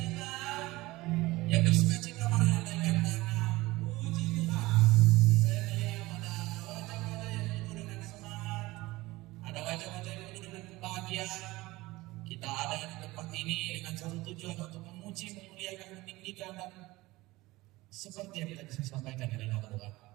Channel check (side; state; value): left; quieter; 19.8 dB